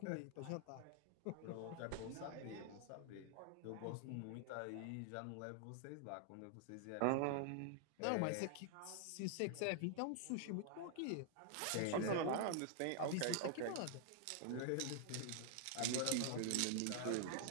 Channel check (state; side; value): different; both; correlation 0.00